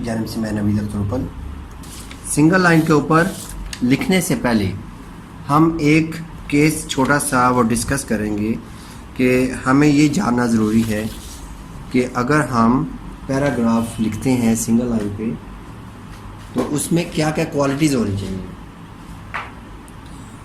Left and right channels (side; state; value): both; identical; correlation 1.00